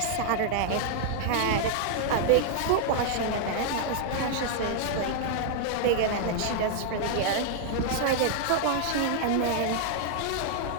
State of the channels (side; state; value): both; different; correlation 0.00